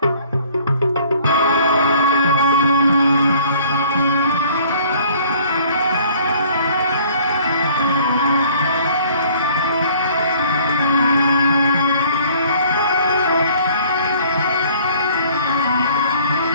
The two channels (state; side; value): inverted; both; correlation -0.55